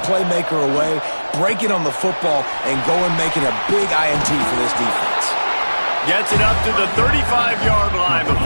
playmaker away, breaking on the football, and going making a big INT for this defense. Gets it up to the 35-yard line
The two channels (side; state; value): both; inverted; correlation -1.00